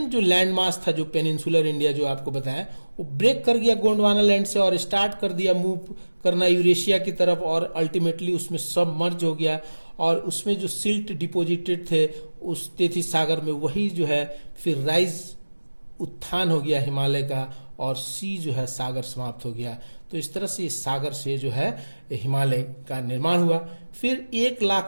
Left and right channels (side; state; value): both; inverted; correlation -1.00